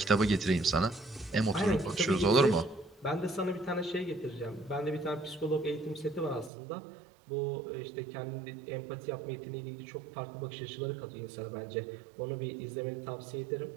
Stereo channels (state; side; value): drops out; left; at 6.5 s